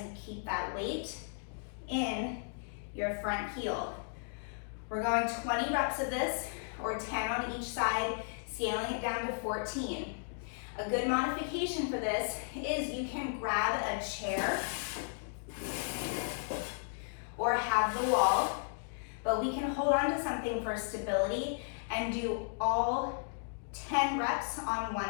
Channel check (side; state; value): right; silent; digital silence